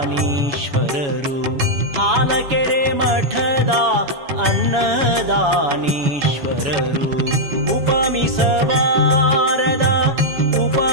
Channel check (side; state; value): left; late; 7.1 ms